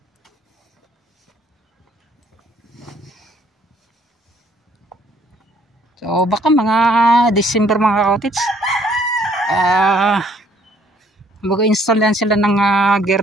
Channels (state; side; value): normal; both; correlation 0.63